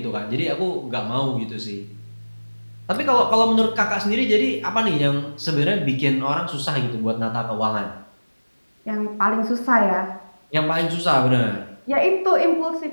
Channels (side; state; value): both; inverted; correlation -1.00